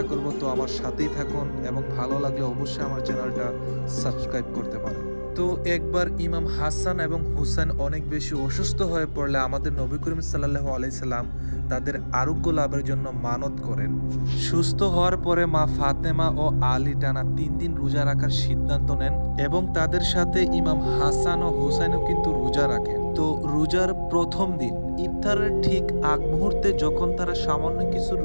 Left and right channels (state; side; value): inverted; both; correlation -1.00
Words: করব। তো আমার সাথেই থাকুন এবং ভালো লাগলে অবশ্যই আমার চ্যানেলটা সাবস্ক্রাইব করতে পারেন। তো একবার ইমাম হাসান এবং হুসাইন অনেক বেশি অসুস্থ হয়ে পড়লে আমাদের নবী করিম সাল্লাল্লাহু আলাইহি সাল্লাম তাদের আরোগ্য লাভের জন্য মানত করেন। সুস্থ হওয়ার পরে মা ফাতেমা ও আলী টানা 3 দিন রোজা রাখার সিদ্ধান্ত নেন এবং তাদের সাথে ইমাম হাসান ও হুসাইনও কিন্তু রোজা রাখেন। তো রোজার প্রথম দিন ইফতারের ঠিক আগ মুহূর্তে যখন তারা সামান্য কিছু